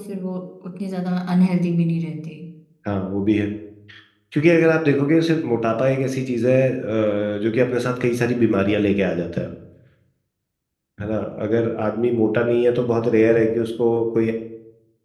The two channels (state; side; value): identical; both; correlation 1.00